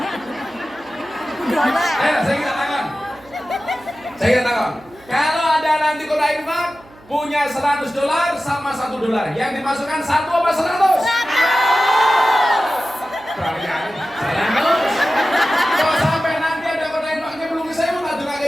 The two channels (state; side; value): noise; right; hum, 26 dB below the sound